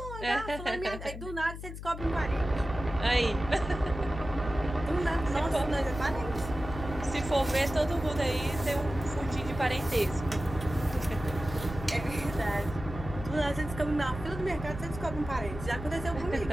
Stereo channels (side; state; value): left; noise; hum, 10 dB below the sound